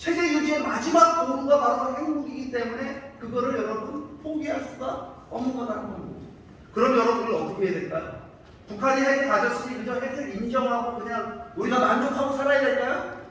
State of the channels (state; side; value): identical; both; correlation 1.00